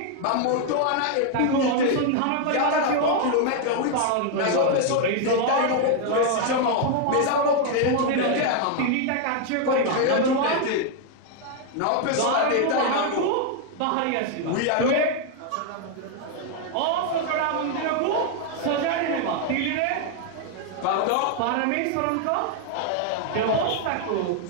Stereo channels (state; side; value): different; both; correlation 0.00